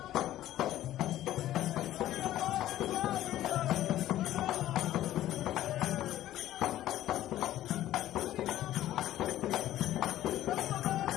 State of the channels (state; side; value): quieter; right; 13.6 dB